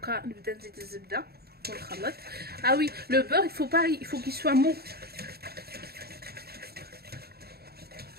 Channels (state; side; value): late; left; 0.46 ms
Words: نبدا نزيد الزبده ونخلط. Ah oui, le beurre, il faut qu'il soit mou.